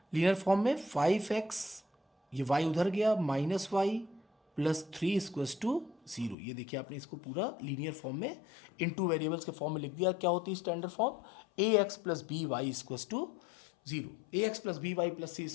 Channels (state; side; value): drops out; right; at 6.4 s